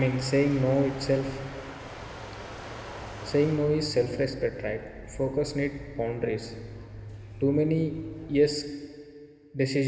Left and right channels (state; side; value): identical; both; correlation 1.00